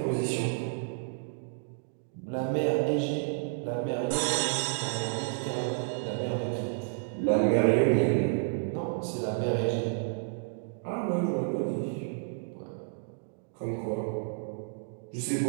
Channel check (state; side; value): silent; left; digital silence